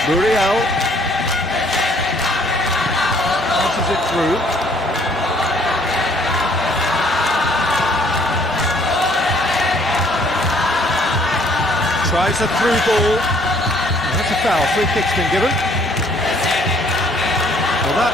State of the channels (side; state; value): both; normal; correlation 0.62